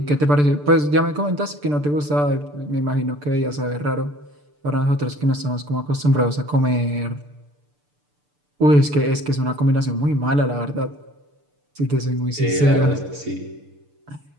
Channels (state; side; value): late; left; 6.8 ms